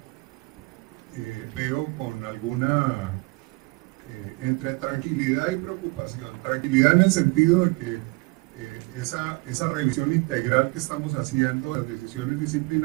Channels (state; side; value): quieter; left; 25.7 dB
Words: veo con alguna entre tranquilidad y preocupación. Tranquilidad en el sentido de que esa revisión integral que estamos haciendo, las decisiones